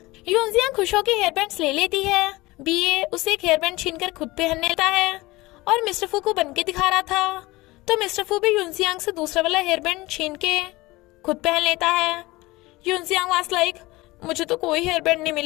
यूनजियांग खुश होकर हेयर बैंड्स ले लेती है। बीए उसे एक हेयर बैंड छीनकर खुद पहन लेता है, और मिस्टर फू को बन के दिखा रहा था, तो मिस्टर फू भी यूनजियांग से दूसरा वाला हेयर बैंड छीन के खुद पहन लेता है। यूनजियांग वाज लाइक मुझे तो कोई हेयर बैंड नहीं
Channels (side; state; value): right; quieter; 20.7 dB